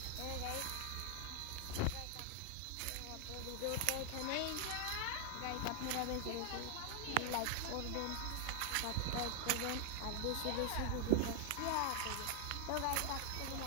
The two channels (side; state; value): both; different; correlation 0.00